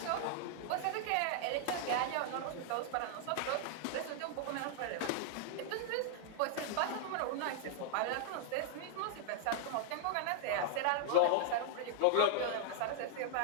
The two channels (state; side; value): different; both; correlation -0.01